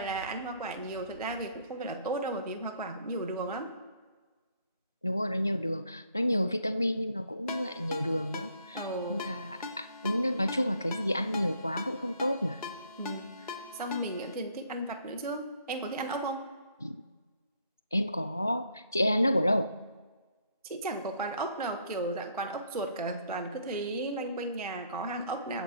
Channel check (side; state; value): both; inverted; correlation -0.67